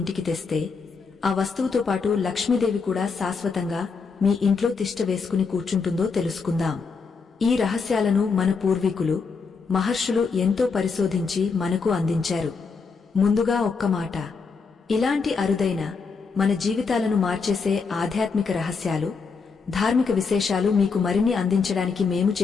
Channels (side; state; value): right; quieter; 5.0 dB